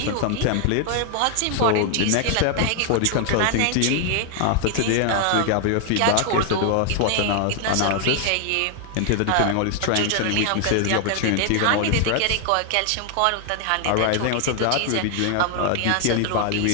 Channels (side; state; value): both; different; correlation 0.00